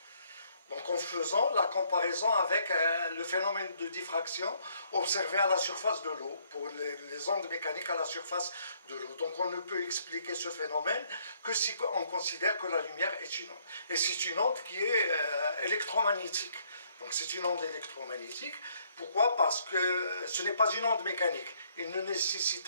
Donc, en faisant la comparaison avec le phénomène de diffraction observé à la surface de l'eau, pour les ondes mécaniques à la surface de l'eau. Donc, on ne peut expliquer ce phénomène que si on considère que la lumière est une onde. Et c'est une onde qui est électromagnétique. Donc c'est une onde électromagnétique. Pourquoi? Parce que ce n'est pas une onde mécanique. Il ne nécessite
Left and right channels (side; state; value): both; inverted; correlation -0.67